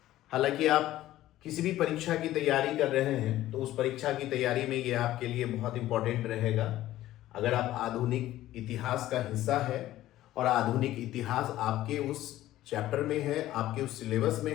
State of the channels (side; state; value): right; quieter; 14.6 dB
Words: हालांकि आप किसी भी परीक्षा की तैयारी कर रहे हैं तो उस परीक्षा की तैयारी में ये आपके लिए बहुत इंपॉर्टेंट रहेगा। अगर आप आधुनिक इतिहास का हिस्सा है और आधुनिक इतिहास आपके उस चैप्टर में है, आपके उस सिलेबस में